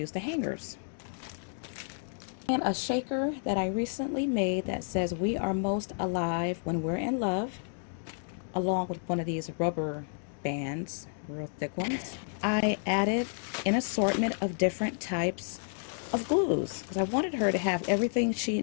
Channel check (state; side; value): silent; right; digital silence